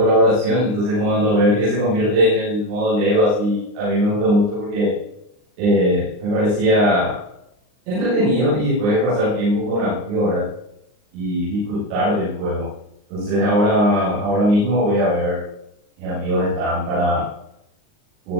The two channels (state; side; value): late; left; 39 ms